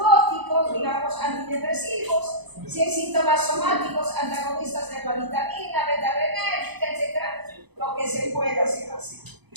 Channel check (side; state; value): left; late; 0.99 ms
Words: digamos antidepresivos. Si hay síntomas somáticos, antagonistas de la vitamina, beta-adrenérgica, etc. Lo que se pueda hacer así.